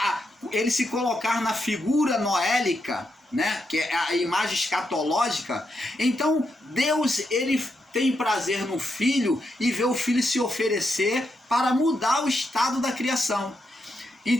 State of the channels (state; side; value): normal; both; correlation 0.83